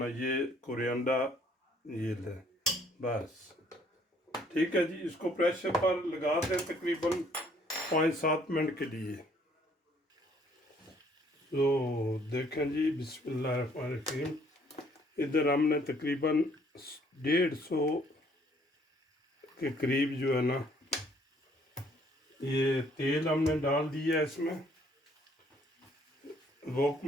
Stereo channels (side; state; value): both; normal; correlation 0.63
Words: ये कोरिएंडर ये ले, बस ठीक है जी। इसको प्रेशर पर लगा दें तकरीबन 5-7 मिनट के लिए। तो देखें जी, बिस्मिल्लाहिर्रहमानिर्रहीम। इधर हमने तकरीबन 150 के करीब जो है ना ये तेल हमने डाल दिया है इसमें वोक